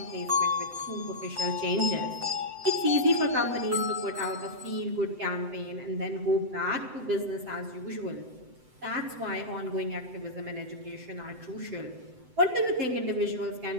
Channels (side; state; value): left; late; 7.8 ms